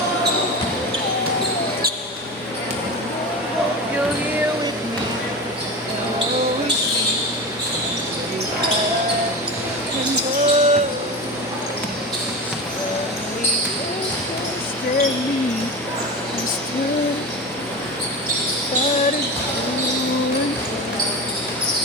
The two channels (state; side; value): normal; both; correlation 0.27